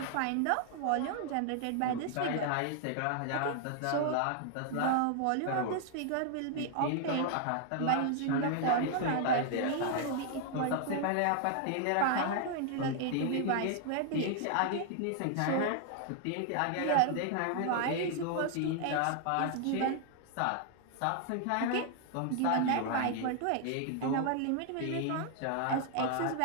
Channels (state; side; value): different; both; correlation 0.00